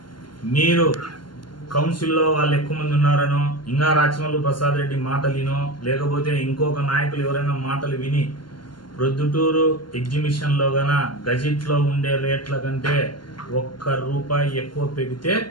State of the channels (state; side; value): late; right; 0.71 ms